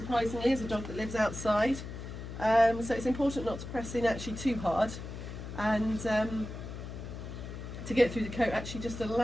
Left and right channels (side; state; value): left; noise; hum, 9 dB below the sound